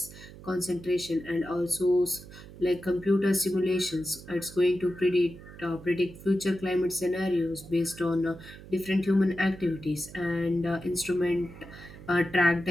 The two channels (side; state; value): right; noise; hum, 17 dB below the sound